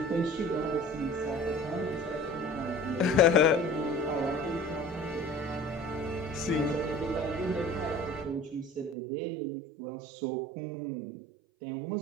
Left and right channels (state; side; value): drops out; left; at 9.0 s